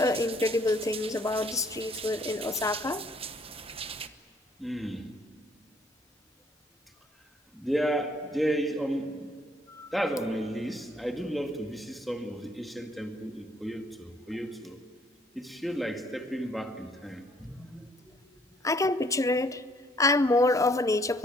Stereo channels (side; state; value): both; normal; correlation 0.64